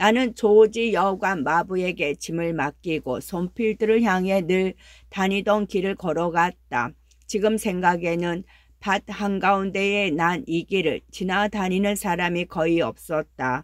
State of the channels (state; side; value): identical; both; correlation 1.00